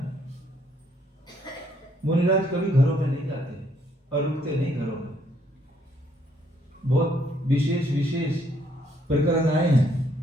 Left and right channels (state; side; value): normal; both; correlation 0.69